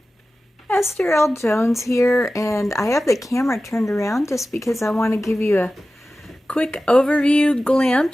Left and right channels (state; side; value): normal; both; correlation 0.95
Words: Esther L. Jones here, and I have the camera turned around just because I want to give you a quick overview